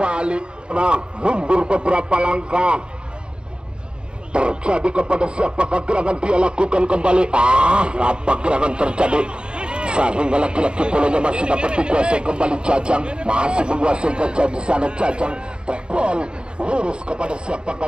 Nah, mundur beberapa langkah. Terjadi kepada siapakah gerangan dia lakukan kembali. Apa gerangan terjadi sehingga laki-laki bolanya masih dapat dikuasai kembali. Jajang masih menguasai gajah di sana. Jajang track ball lurus kepada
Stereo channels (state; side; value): late; left; 0.051 ms